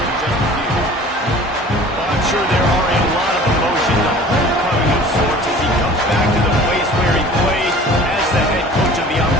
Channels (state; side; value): normal; both; correlation 0.45